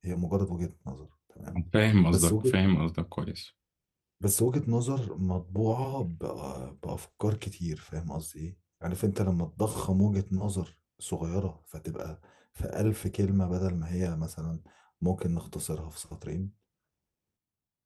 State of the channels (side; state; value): both; identical; correlation 1.00